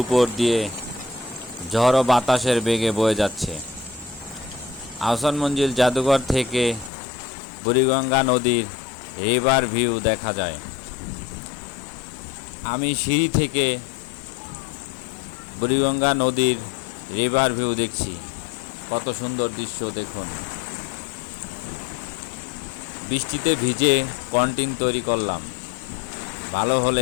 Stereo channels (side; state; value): right; drops out; at 6.9 s